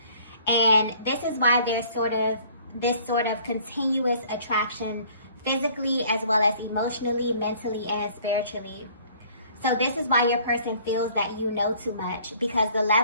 And this is why there's this sort of continuous attraction physically as well as emotionally, mentally, and spiritually. So this is why your person feels that you know too much, because the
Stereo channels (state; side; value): inverted; both; correlation -0.55